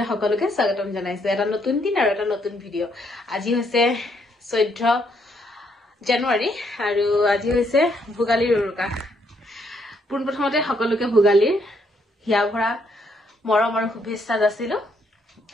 সকলোকে স্বাগতম জনাইছো। এটা নতুন দিন আৰু এটা নতুন ভিডিঅ'। আজি হৈছে 14 জানুৱাৰী আৰু আজি হৈছে ভোগালীৰ উৰুকা। পোনপ্ৰথমতে সকলোকে ভোগালীৰ হিয়া ভৰা মৰম আৰু শুভেচ্ছা যাচিলো।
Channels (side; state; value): both; normal; correlation 0.72